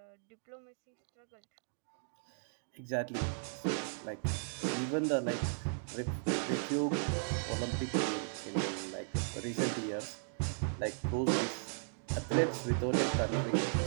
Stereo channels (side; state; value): left; silent; digital silence